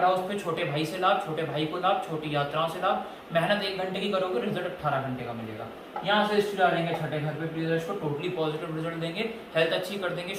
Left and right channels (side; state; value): both; identical; correlation 1.00